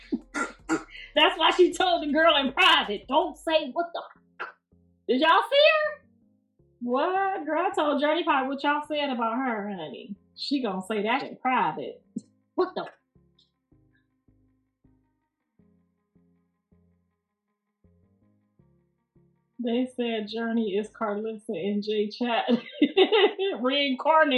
That's why she told the girl in private, don't say what the. Did y'all see her? What? Girl, I told Journey Pie what y'all said about her, honey. She gonna say that in private. What the? They said Journey is Karlissa in J-Chat.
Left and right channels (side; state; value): both; identical; correlation 1.00